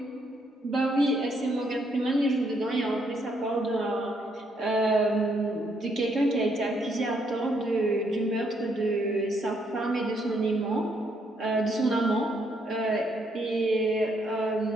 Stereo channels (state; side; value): normal; both; correlation 0.73